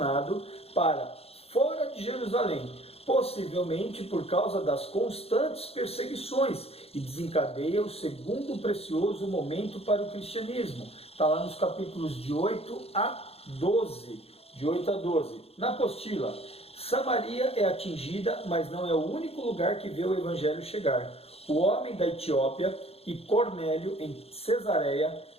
para fora de Jerusalém, possivelmente por causa das constantes perseguições, e desencadeia o segundo precioso momento para o cristianismo. Está lá nos capítulos de 8 a 12. Na apostila, Samaria é atingida, mas não é o único lugar que vê o Evangelho chegar. O homem da Etiópia e Cornélio, em Cesareia,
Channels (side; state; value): right; late; 0.29 ms